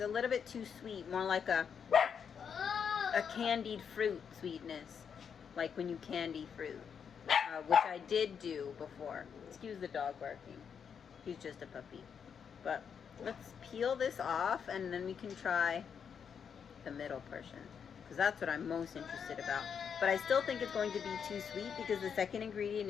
little bit too sweet, more like a candied fruit sweetness, like when you candy fruit, which I did do before. Excuse the dog barking. He's just a puppy. But let's peel this off, and then we can try the middle portion. because that's what I'm most interested about. But I still think it's going to be too sweet because the second ingredient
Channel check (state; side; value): quieter; right; 7.1 dB